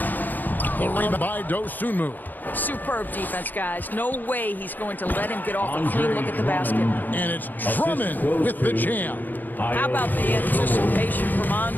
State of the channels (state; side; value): late; right; 0.086 ms